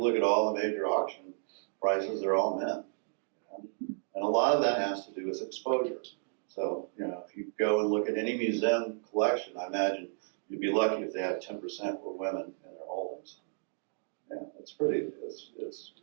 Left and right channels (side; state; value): left; silent; digital silence